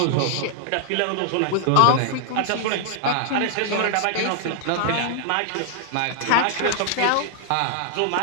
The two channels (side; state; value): both; different; correlation -0.01